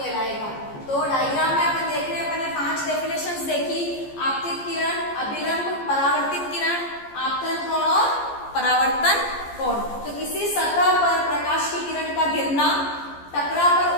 तो डायग्राम में अपन देख रहे हैं, अपन ने 5 डेफिनेशंस देखी: आपतित किरण, अभिलंब, परावर्तित किरण, आपतन कोण और परावर्तन कोण। तो किसी सतह पर प्रकाश की किरण का गिरना, टकरा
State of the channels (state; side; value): late; right; 14 ms